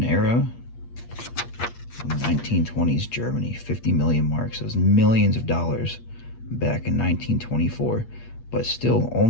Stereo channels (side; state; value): right; late; 8.5 ms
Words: era. 1920s Germany, 50 million marks. That was millions of dollars back in 1924, but still